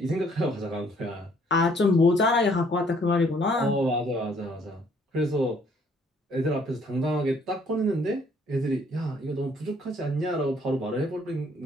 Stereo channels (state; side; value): normal; both; correlation 0.63